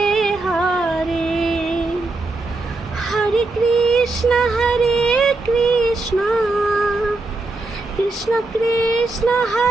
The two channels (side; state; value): left; quieter; 3.2 dB